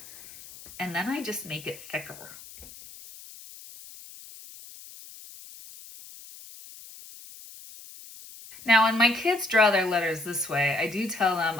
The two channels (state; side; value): noise; left; hiss, 18 dB below the sound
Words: And then I just make it thicker. Now, when my kids draw their letters this way, I do tell them